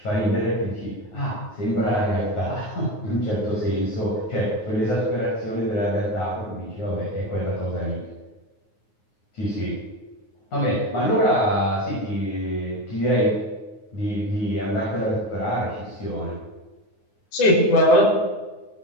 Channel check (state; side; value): late; right; 9.5 ms